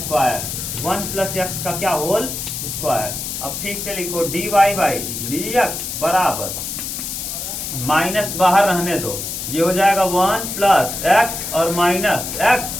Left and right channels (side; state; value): left; noise; hiss, 5 dB below the sound